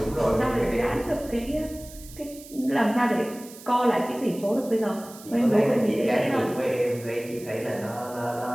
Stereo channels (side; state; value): right; noise; hiss, 18 dB below the sound